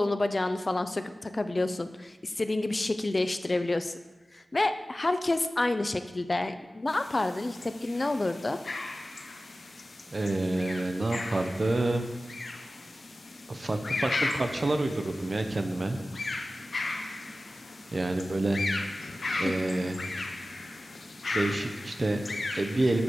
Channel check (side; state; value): both; normal; correlation 0.95